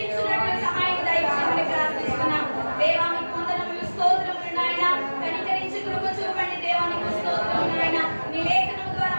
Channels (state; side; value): inverted; both; correlation -1.00